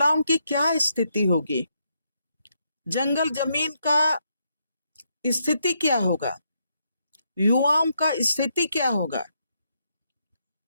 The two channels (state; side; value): inverted; both; correlation -0.78